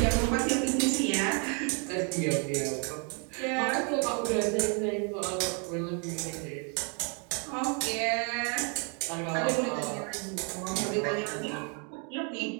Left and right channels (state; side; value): quieter; left; 37.7 dB